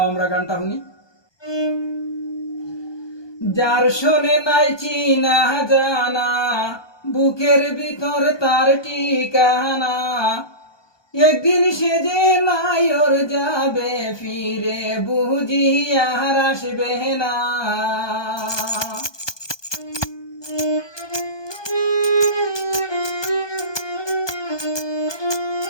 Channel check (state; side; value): late; right; 1.2 ms